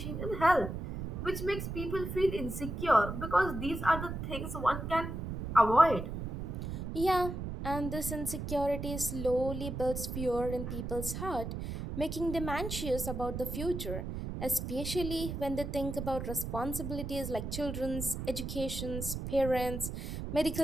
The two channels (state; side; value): noise; right; rumble, 5 dB below the sound